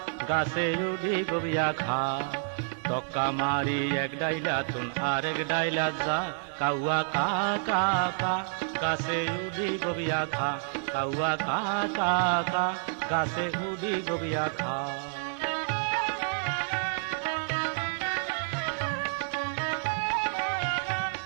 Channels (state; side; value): silent; left; digital silence